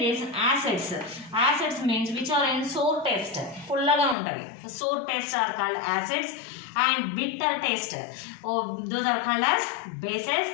acids means which are in sour taste. Fullaga untavi. Sour taste are called acids and bitter taste. Those are called as bases,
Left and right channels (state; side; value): drops out; right; at 4.2 s